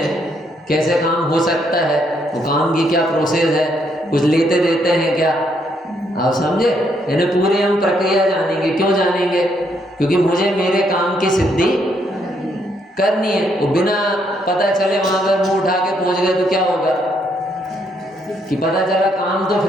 कैसे काम हो सकता है, वो काम की क्या प्रोसेस है, कुछ लेते देते हैं क्या, आप समझे? यानी पूरी हम प्रक्रिया जानेंगे। क्यों जानेंगे? क्योंकि मुझे मेरे काम की सिद्धि करनी है। वो बिना पता चले वहां पर मुंह उठा के पहुंच गए तो क्या होगा? कि पता चला काम तो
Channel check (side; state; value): both; normal; correlation 0.73